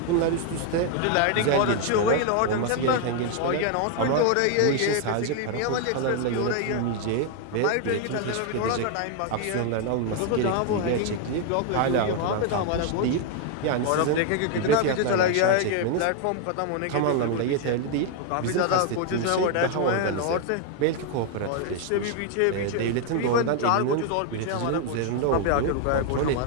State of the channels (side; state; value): both; different; correlation 0.00